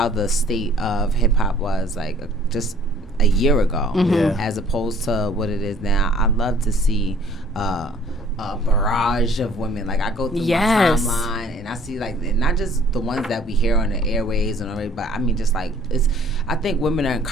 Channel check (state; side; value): normal; both; correlation 0.56